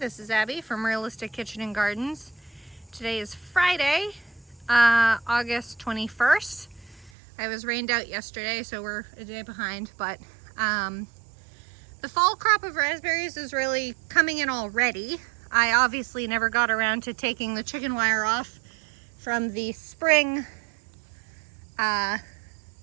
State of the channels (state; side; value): drops out; left; at 7.1 s